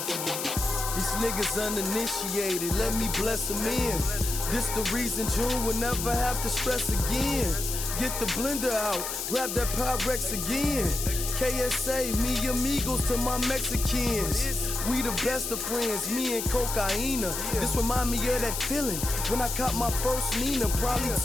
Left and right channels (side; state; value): left; noise; hiss, 4 dB below the sound